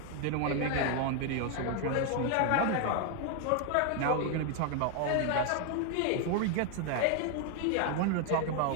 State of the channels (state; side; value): different; both; correlation 0.00